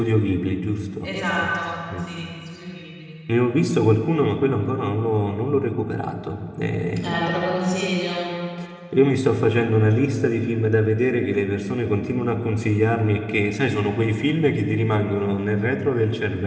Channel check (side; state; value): both; identical; correlation 1.00